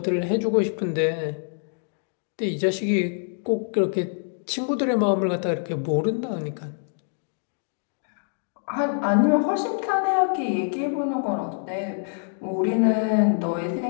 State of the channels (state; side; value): silent; right; digital silence